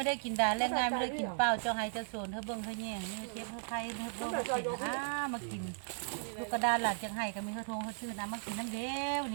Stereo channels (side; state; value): left; silent; digital silence